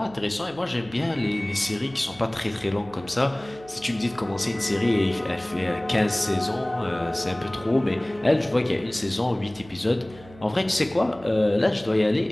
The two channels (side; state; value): right; noise; hum, 21 dB below the sound